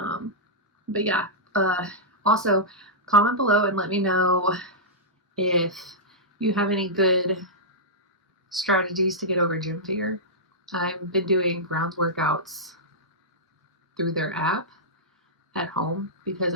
yeah, also comment below and let me know if you have any good strategies to get over gym fear. I've been doing grounds workouts through their app at home because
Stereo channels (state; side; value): normal; both; correlation -0.11